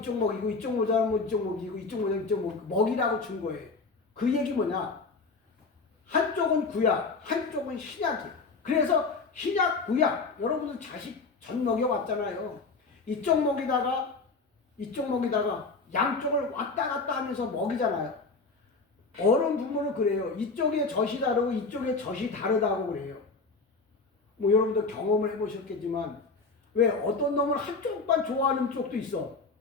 먹이고 이쪽 모자라면 이쪽 먹이고 이쪽 모자라면 이쪽 먹이라고 준 거예요. 그 얘기 뭐냐? 한쪽은 구약, 한쪽은 신약이에요. 그래서 신약, 구약, 여러분들 자식 전 먹여왔잖아요. 이쪽 먹이다가 이쪽 먹이다가 양쪽을 왔다 갔다 하면서 먹이잖아요. 어른 부모는 그래요. 이쪽에 젖이 다르고 이쪽에 젖이 다르다고 그래요. 뭐 여러분들 경험을 해보셨겠지만 왜 어떤 놈은 한쪽만 좋아하는 쪽도 있어.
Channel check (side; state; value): right; quieter; 4.1 dB